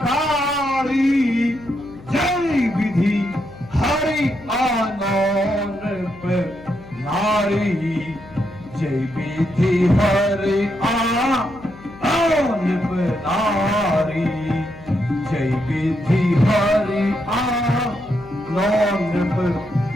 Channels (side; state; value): left; noise; hum, 20 dB below the sound